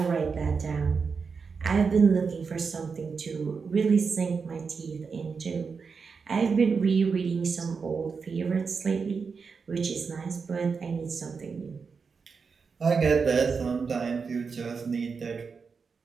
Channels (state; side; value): quieter; left; 5.3 dB